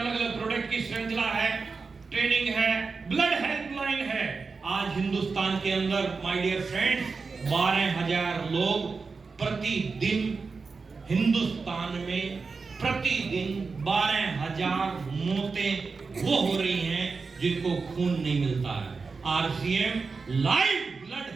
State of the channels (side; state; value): left; quieter; 4.6 dB